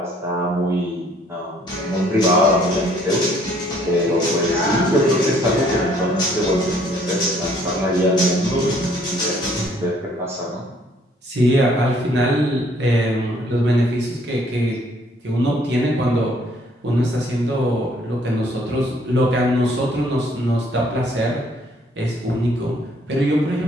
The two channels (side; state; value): both; normal; correlation 0.62